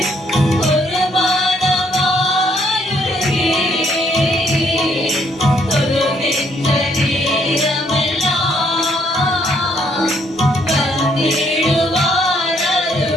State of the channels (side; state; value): both; normal; correlation 0.69